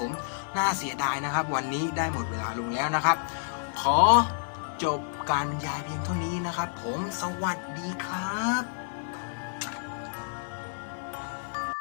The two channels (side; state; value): right; silent; 57 dB below the other